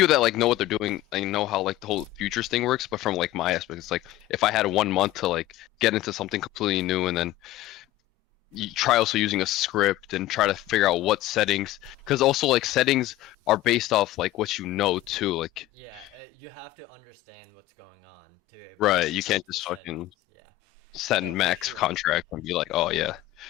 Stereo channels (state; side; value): quieter; right; 15.7 dB